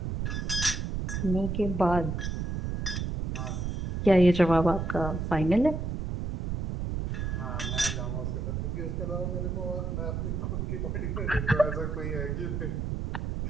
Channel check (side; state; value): right; noise; rumble, 2 dB below the sound